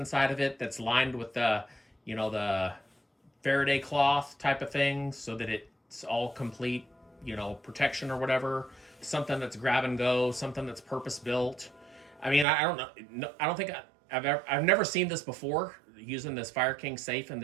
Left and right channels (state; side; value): drops out; left; at 12.5 s